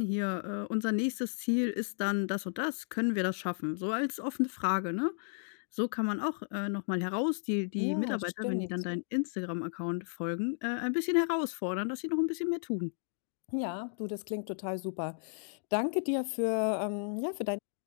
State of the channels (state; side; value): silent; right; digital silence